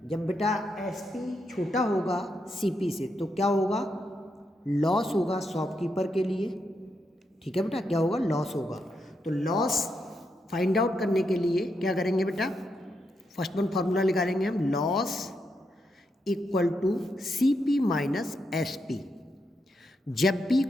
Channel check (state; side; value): normal; both; correlation 0.82